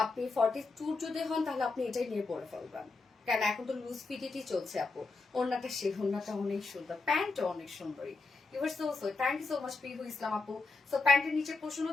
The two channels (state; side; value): quieter; right; 3.8 dB